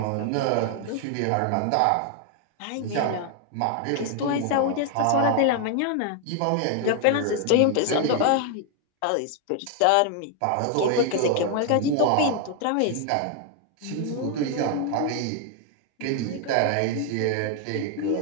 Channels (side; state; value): both; different; correlation 0.00